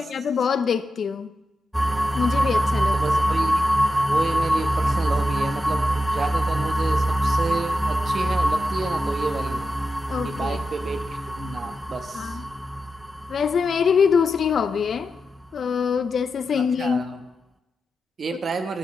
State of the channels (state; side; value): normal; both; correlation 0.89